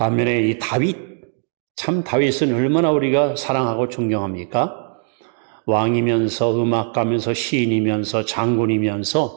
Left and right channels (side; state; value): left; silent; 63 dB below the other